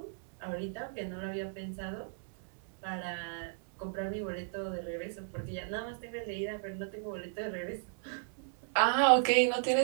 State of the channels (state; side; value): silent; left; digital silence